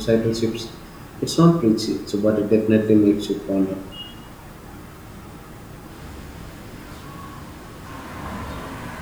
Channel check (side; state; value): both; identical; correlation 1.00